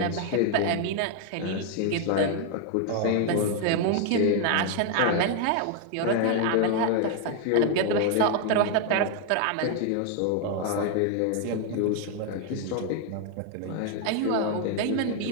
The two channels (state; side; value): different; both; correlation 0.00